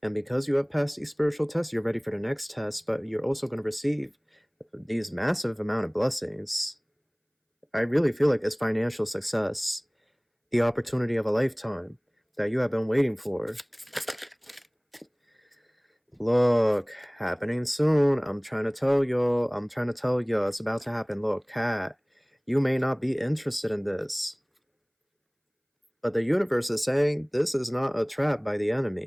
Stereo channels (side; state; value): both; identical; correlation 1.00